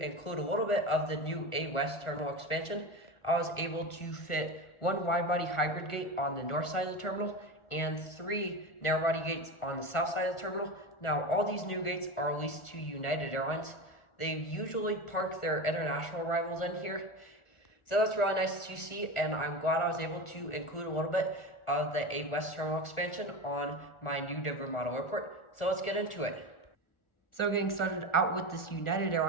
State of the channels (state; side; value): late; right; 1.5 ms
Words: a little bit of the new A West terminal expansion. I was able to fit one wide-body hybrid gate on the north side of the terminal and 3 narrow-body gates on the south side of the terminal. Now, all these new gates are leased to United Airlines. They usually park their international rivals in here, so that's really nice to see, and I'm glad I was able to include a little bit of the A West terminal expansion on my new Denver model airport. So let's get into it. So getting started out with this United